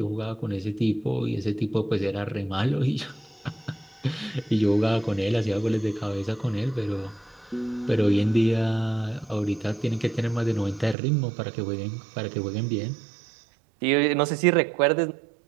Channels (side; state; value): left; drops out; at 11.0 s